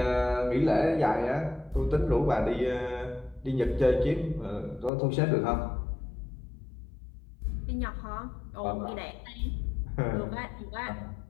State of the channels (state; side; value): drops out; right; at 4.9 s